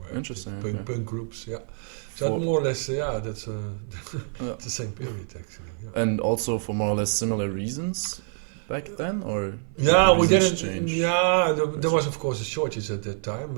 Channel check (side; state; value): left; silent; 56 dB below the other